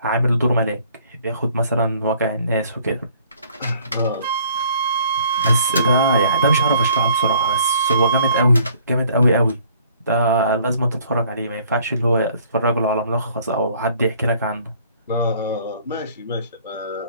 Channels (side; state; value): both; inverted; correlation -0.58